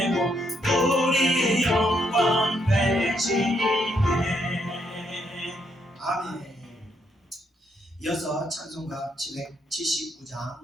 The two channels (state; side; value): normal; both; correlation 0.75